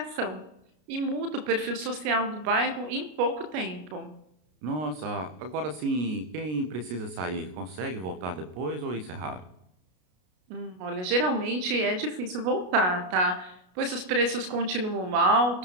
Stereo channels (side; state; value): left; late; 33 ms